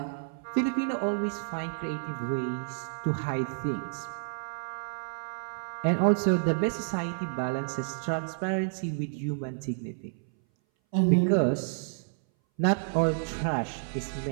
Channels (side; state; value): left; silent; 58 dB below the other